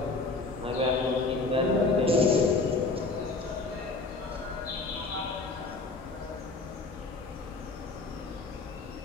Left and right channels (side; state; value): right; quieter; 3.6 dB